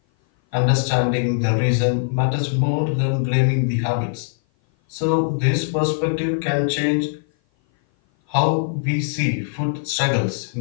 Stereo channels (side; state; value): right; silent; 56 dB below the other